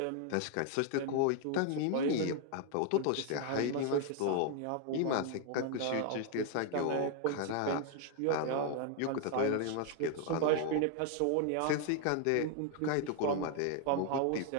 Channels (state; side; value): different; both; correlation 0.00